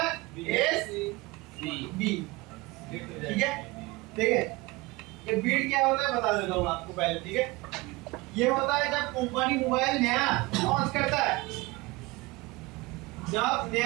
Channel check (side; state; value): left; quieter; 22.7 dB